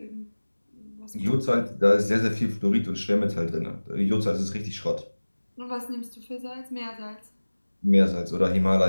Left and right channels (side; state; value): both; inverted; correlation -1.00